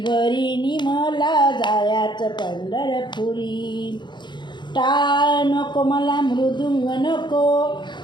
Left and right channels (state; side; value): late; right; 0.22 ms